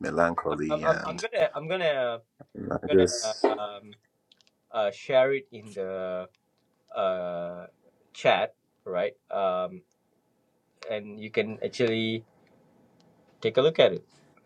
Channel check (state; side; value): identical; both; correlation 1.00